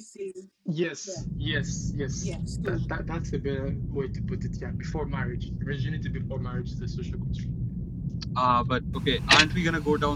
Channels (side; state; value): both; identical; correlation 1.00